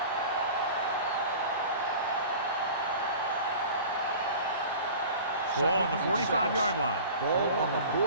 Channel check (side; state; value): both; inverted; correlation -0.40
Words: Ball on the 45-yard line. Ball on the